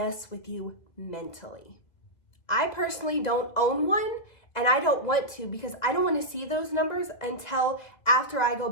with you mentally. I personally don't own one, and I don't want to, because I don't want to see those numbers until after I go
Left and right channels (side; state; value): right; late; 1.9 ms